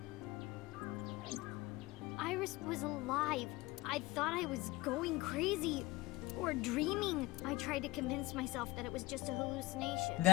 Iris was alive. I thought I was going crazy or dreaming. I tried to convince myself that it was just a hallucination.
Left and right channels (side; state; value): right; quieter; 20.1 dB